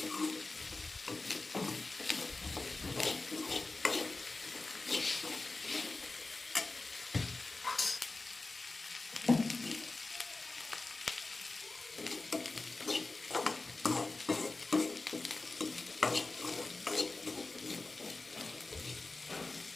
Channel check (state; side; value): quieter; right; 3.4 dB